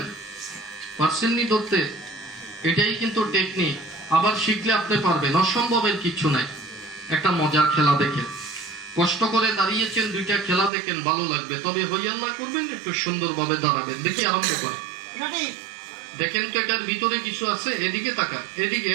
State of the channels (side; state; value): left; drops out; at 10.7 s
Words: পারছেননি ধরতে? এটাই কিন্তু টেকনিক। আবার শিখলে আপনি পারবেন, অসম্ভবের কিছু নাই। একটা মজার খেলা দেখেন, কষ্ট করে দাঁড়িয়েছেন, 2টা খেলা দেখেন, ভালো লাগবে। তবে হইয়াল্লা করবেন, একটু সুন্দরভাবে দাঁড়াবেন। দেখি আরম্ভ করে দেখেন তো এটার ভিতরে কিছু আছে। এদিকে তাকান, এদিকে,